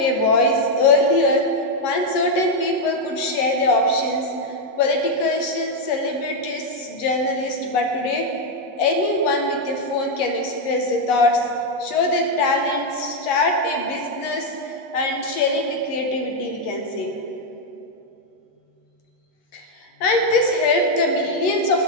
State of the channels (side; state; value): right; late; 8.2 ms